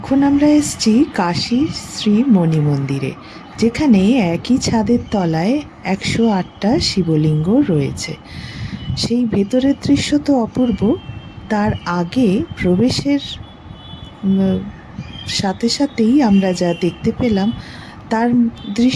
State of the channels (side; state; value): both; identical; correlation 1.00